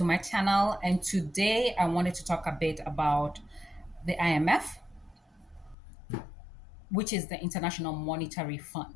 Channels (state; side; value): drops out; right; at 5.8 s